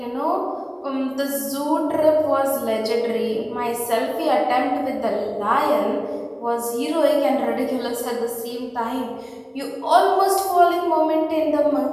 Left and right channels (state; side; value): identical; both; correlation 1.00